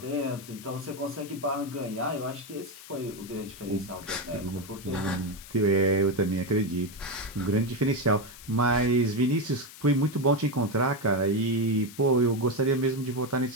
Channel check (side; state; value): left; noise; hiss, 17 dB below the sound